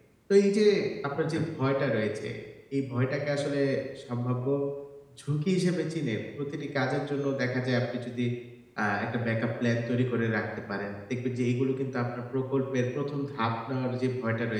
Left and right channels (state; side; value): identical; both; correlation 1.00